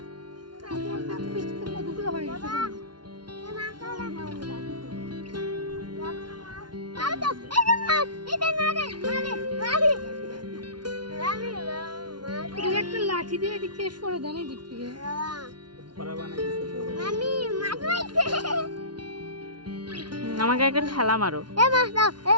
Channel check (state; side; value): late; left; 0.71 ms